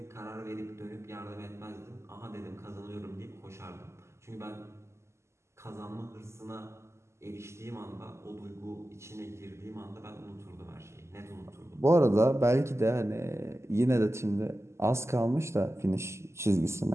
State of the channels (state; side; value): late; left; 0.13 ms